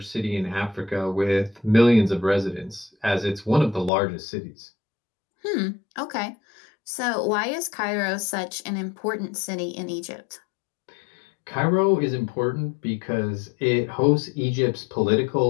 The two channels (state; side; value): drops out; right; at 3.9 s